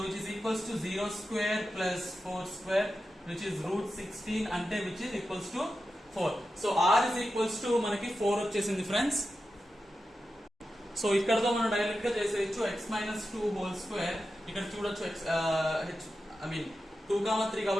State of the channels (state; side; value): normal; both; correlation 0.91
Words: which is equals to 0 square plus 4 square which is root 16, అంటే which is equals to 4. So r is equals to మనకి 4 వచ్చేసింది ఫ్రెండ్స్. సో ఇక్కడతో మనం డైరెక్ట్ గా చేసేయచ్చు x మైనస్ 2 హోల్ స్క్వేర్. ఇక్కడ చూడొచ్చు ఐ మీన్ 2, 3